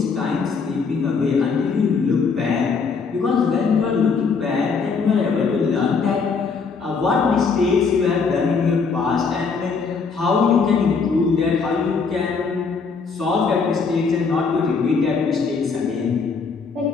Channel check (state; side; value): quieter; right; 5.1 dB